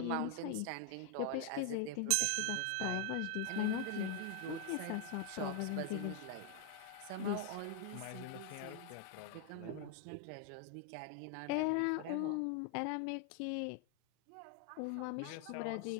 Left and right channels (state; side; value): different; both; correlation 0.00